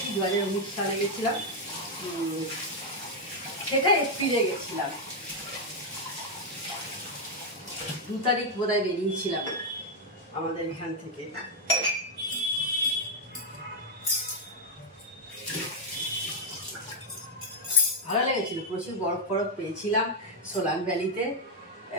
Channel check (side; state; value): both; normal; correlation 0.01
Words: 2019 সালে গেছিলাম। সেটা এপ্রিলে গেছিলাম, 2 তারিখ বোধহয় বেরিয়েছিলাম আমাদের এখান থেকে। ভালো লেগেছিল, প্রচুর বরফ বরফ পেয়েছিলাম সোলাং ভ্যালিতে।